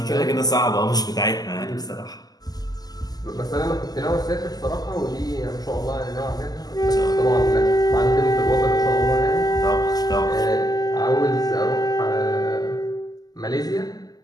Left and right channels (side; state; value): right; late; 0.19 ms